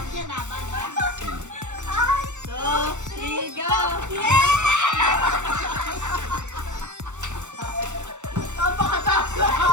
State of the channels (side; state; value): left; late; 0.84 ms